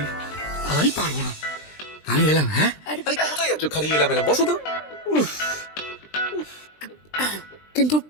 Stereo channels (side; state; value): right; late; 20 ms